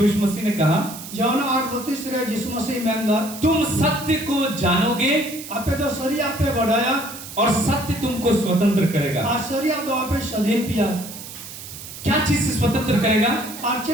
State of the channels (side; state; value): right; noise; hiss, 12 dB below the sound